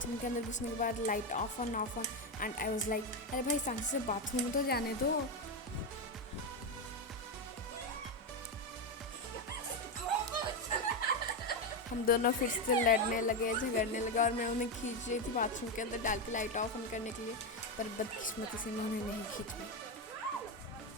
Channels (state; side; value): normal; both; correlation 0.10